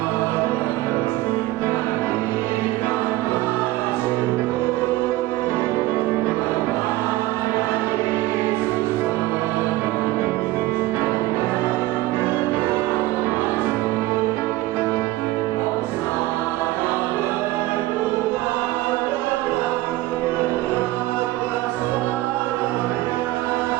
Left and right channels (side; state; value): left; quieter; 17.6 dB